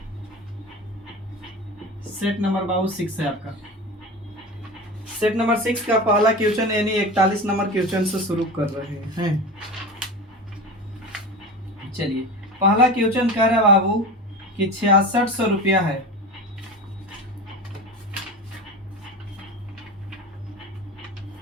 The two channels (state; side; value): normal; both; correlation 0.29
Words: है आपका। सेट नंबर 6 का पहला क्वेश्चन यानी 41 नंबर क्वेश्चन से शुरू कर रहे हैं। चलिए, पहला क्वेश्चन कह रहा है बाबू कि 6600 रुपया है।